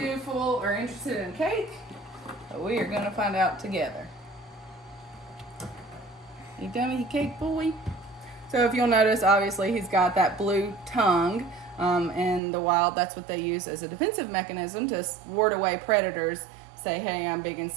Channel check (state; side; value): drops out; left; at 12.4 s